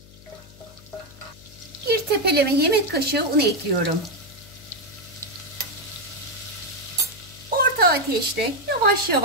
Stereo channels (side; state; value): left; noise; hum, 22 dB below the sound